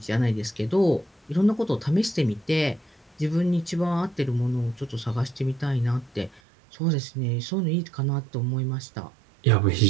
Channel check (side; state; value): left; drops out; at 6.4 s